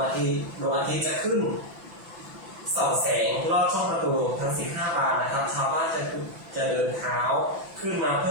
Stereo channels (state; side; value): late; left; 5.9 ms